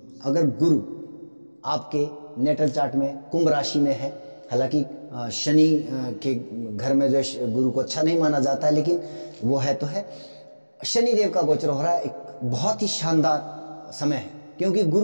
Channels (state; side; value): inverted; both; correlation -1.00